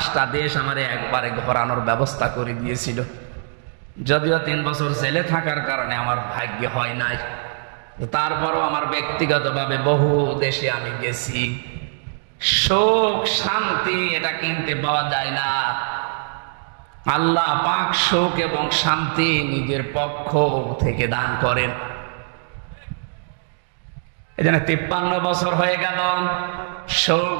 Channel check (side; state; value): left; silent; digital silence